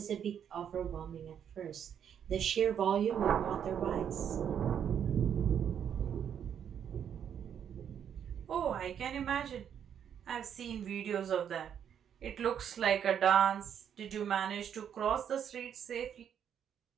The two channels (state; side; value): quieter; left; 8.6 dB